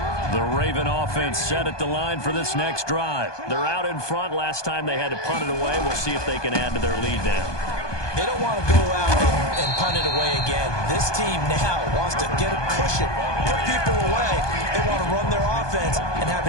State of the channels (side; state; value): right; late; 1.2 ms